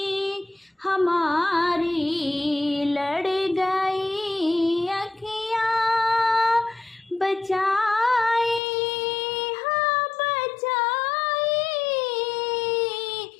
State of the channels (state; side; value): drops out; right; at 8.6 s